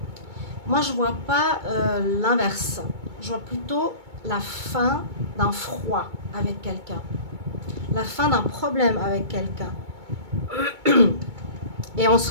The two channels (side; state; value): left; late; 2.2 ms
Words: Moi, je vois pas l'inverse. Je vois plutôt la fin d'un froid avec quelqu'un. La fin d'un problème avec quelqu'un. Et on